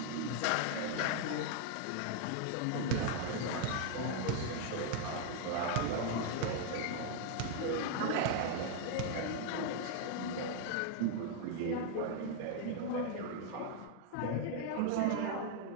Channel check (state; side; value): different; both; correlation 0.00